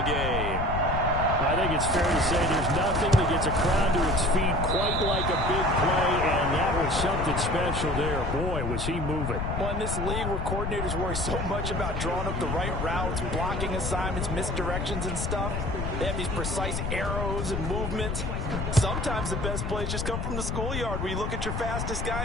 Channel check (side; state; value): left; noise; rumble, 2 dB below the sound